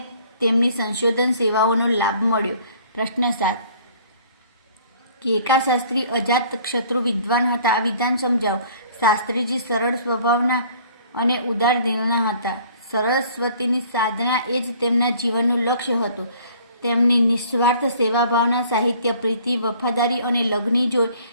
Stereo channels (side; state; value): both; inverted; correlation -0.55